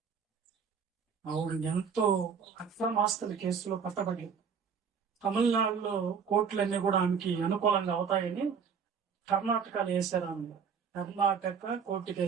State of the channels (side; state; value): left; quieter; 6.5 dB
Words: ఆవిడ ఎంతో అక్రమాస్తుల కేసులో పట్టబడి తమిళనాడులో కోర్టులన్నీ కూడా ఆమెకి అనుకూలంగా అవుతాయని కర్ణాటకలో వేశారు. ఆమె కర్ణాటక కోర్టుకి